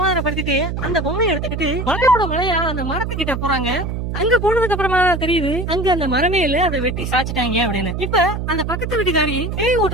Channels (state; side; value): noise; right; hum, 4 dB below the sound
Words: அந்த பொம்மையை எடுத்துக்கிட்டு மலையோட மலையா அந்த மரத்துக்கிட்ட போறாங்க. அங்க போனதுக்கு அப்புறமா தெரியுது அங்க அந்த மரமே இல்ல, அதை வெட்டி சாச்சிட்டாங்க அப்படின்னு. இப்ப அந்த பக்கத்து வீட்டுக்காரி பேய்